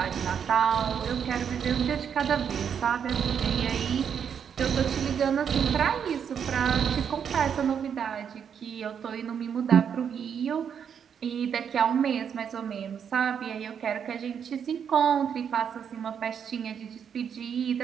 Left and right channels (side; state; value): left; quieter; 7.7 dB